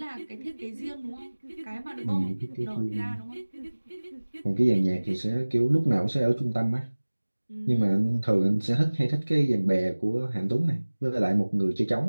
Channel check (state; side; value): inverted; both; correlation -1.00